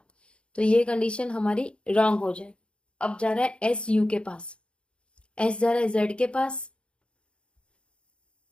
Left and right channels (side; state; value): right; late; 0.057 ms